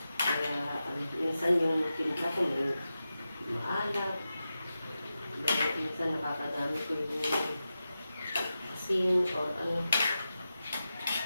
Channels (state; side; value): inverted; both; correlation -0.91